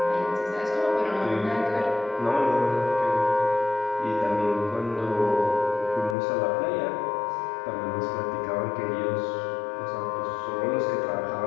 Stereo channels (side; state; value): right; drops out; at 6.2 s